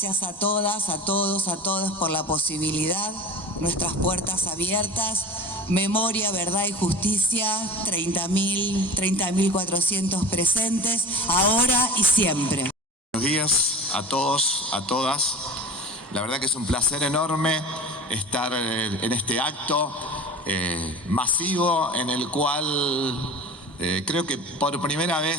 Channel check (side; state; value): both; normal; correlation 0.36